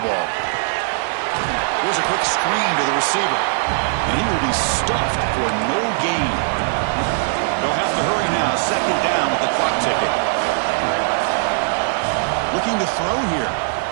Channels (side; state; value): left; silent; 65 dB below the other